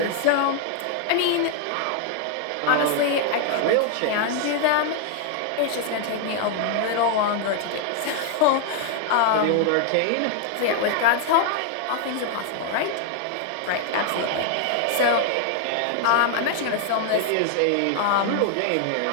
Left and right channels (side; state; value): both; different; correlation 0.00